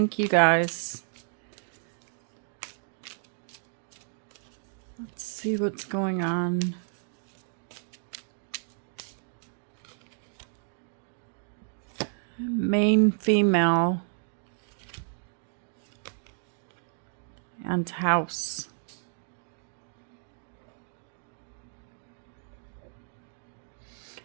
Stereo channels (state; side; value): silent; left; digital silence